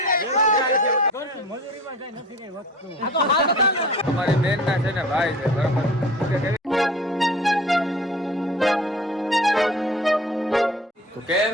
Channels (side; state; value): both; normal; correlation 0.41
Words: અમારી બેન ના છે ને ભાઈ છે, બરાબર. તો કેમ